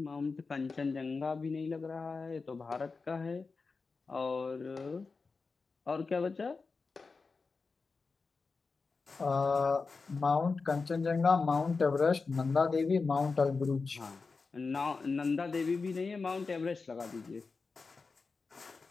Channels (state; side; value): quieter; right; 4.4 dB